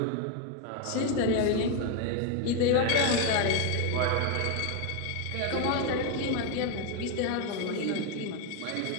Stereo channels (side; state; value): both; different; correlation 0.01